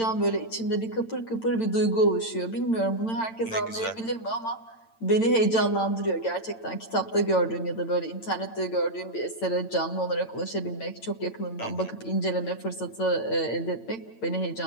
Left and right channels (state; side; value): late; right; 8.9 ms